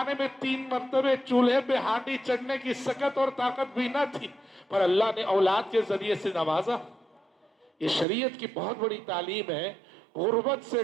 میں 3 مرتبہ چولہے پہ ہانڈی چڑھنے کی سکت اور طاقت بھی نہ تھی، پر اللہ نے اولاد کے ذریعے سے نوازا۔ یہ شریعت کی بہت بڑی تعلیم ہے۔ غربت سے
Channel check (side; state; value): left; drops out; at 8.1 s